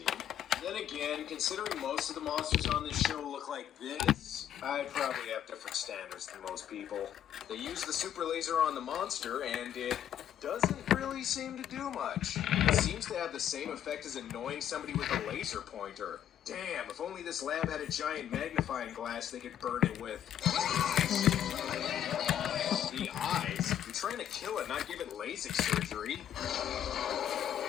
Then again, considering most of the monsters on this show look like this, I probably have different standards than most people. They use the super laser on the monster, and it doesn't really seem to do much. It seems to have the same effect as annoying somebody with a laser pointer. Damn, if only this lab had a giant magnifying glass they could burn it with. The eyes? You're trying to kill it, not give it LASIK surgery.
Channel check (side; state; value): right; quieter; 10.4 dB